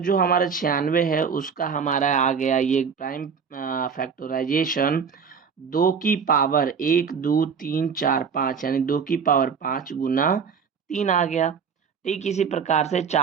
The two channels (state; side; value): quieter; left; 6.3 dB